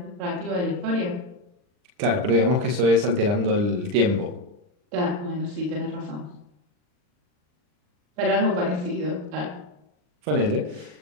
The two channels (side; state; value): left; late; 39 ms